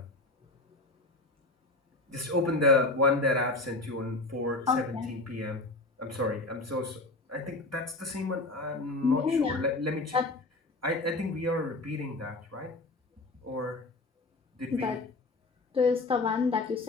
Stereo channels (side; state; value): right; quieter; 3.1 dB